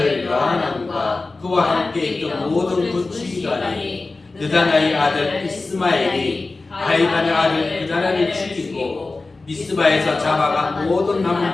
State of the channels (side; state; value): right; quieter; 3.5 dB